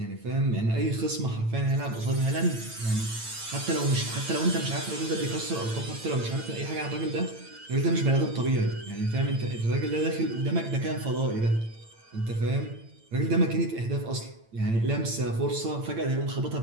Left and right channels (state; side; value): late; left; 8.9 ms